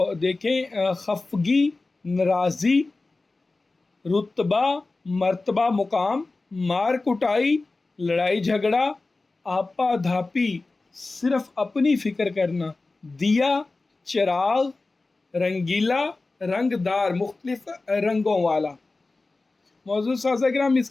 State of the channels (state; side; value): quieter; right; 3.4 dB